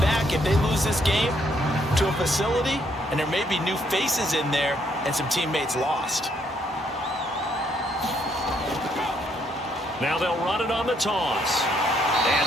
back if they lose this game to a facility, and there may be new faces in there and some teammates lost. Now they'll run it on the toss.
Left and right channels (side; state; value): both; normal; correlation 0.71